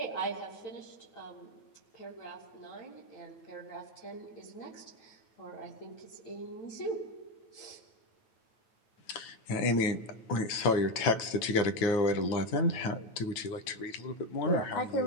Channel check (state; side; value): late; right; 9.1 ms